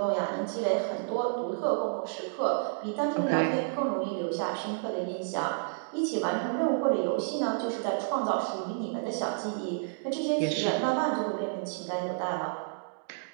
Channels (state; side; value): silent; left; digital silence